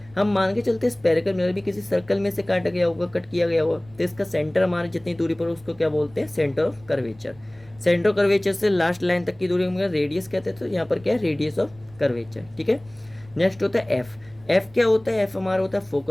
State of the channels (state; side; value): noise; right; rumble, 26 dB below the sound